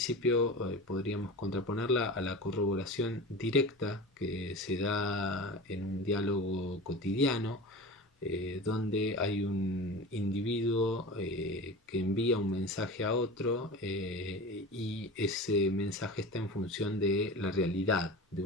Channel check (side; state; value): both; normal; correlation 0.32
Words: podríamos contraponerla a la corroboración directa que se da en un diálogo cotidiano, donde hay un individuo que envía un mensaje a otro y ese mensaje está en función de la realidad, de